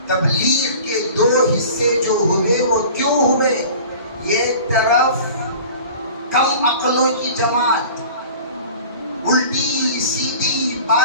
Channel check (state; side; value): inverted; both; correlation -0.43